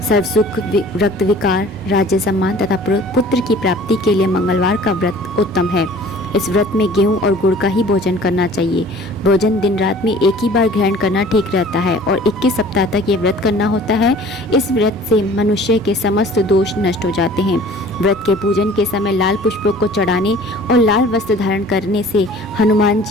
सर्व सुख, रक्त विकार, राज्य सम्मान तथा पुत्र की प्राप्ति के लिए मंगलवार का व्रत उत्तम है। इस व्रत में गेहूं और गुड़ का ही भोजन करना चाहिए। भोजन दिन रात में एक ही बार ग्रहण करना ठीक रहता है और 21 सप्ताह तक ये व्रत करना होता है। इस व्रत से मनुष्य के समस्त दोष नष्ट हो जाते हैं। व्रत के पूजन के समय लाल पुष्पों को चढ़ाने और लाल वस्त्र धारण करने से हनुमान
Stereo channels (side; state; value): both; normal; correlation 0.48